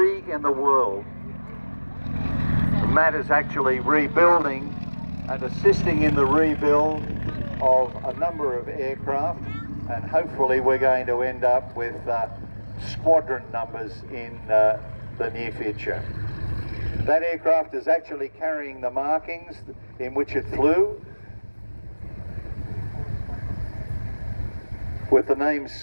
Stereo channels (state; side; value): inverted; both; correlation -1.00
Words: in the world. Matt is actually rebuilding and assisting in the rebuild of a number of aircraft, and hopefully we're going to end up with squadron numbers in the near future. That aircraft is actually carrying the markings in which it flew, with the name